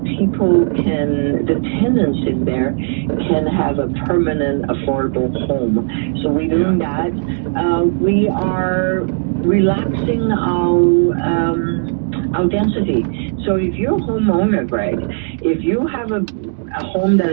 people can, the tenants in there can have a permanent affordable home. So we're doing that. We are relaxing our density. So if you're a homeowner, Greg, if you have a home that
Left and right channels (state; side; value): silent; left; 60 dB below the other